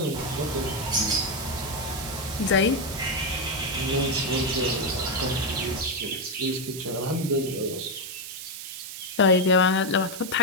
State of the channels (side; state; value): right; noise; hiss, 9 dB below the sound